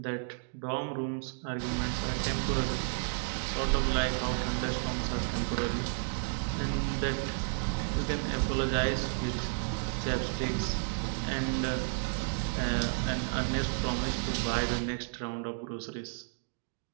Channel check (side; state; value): left; silent; digital silence